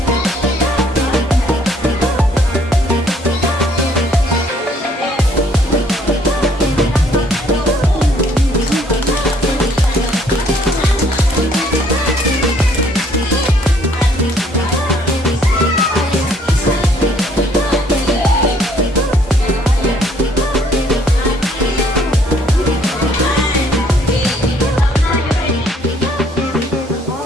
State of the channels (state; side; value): normal; both; correlation 0.63